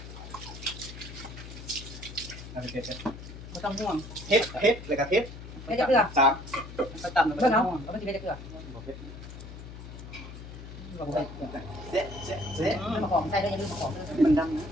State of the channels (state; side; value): noise; left; hum, 12 dB below the sound